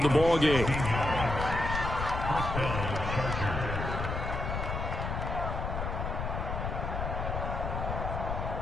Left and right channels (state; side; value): noise; left; rumble, 3 dB below the sound